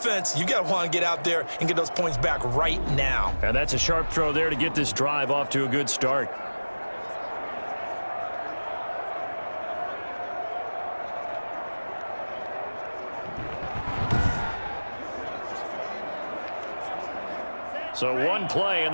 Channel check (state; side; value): inverted; both; correlation -1.00